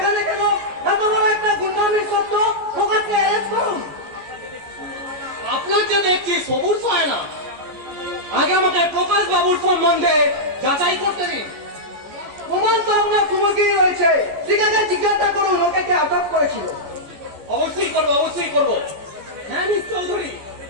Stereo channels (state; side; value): late; left; 14 ms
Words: কেন? এত বড় একটা গুন্ডামির সত্য প্রকাশকে অ্যারেস্ট করুন। আপনার যে দেখছি সবুর হয় না, আগে আমাকে প্রকাশ বাবুর সম্বন্ধে যাচাই করতে দিন। প্রমাণ তো আপনার সুমুখেই রয়েছে। ঠিক আছে, জিজ্ঞাসা করুন ওকে কে আটক করেছিল। অবশ্যই করবো, অবশ্যই করবো। হ্যাঁ মিস চৌধুরী,